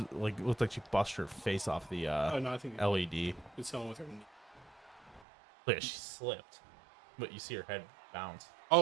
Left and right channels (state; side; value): drops out; left; at 5.2 s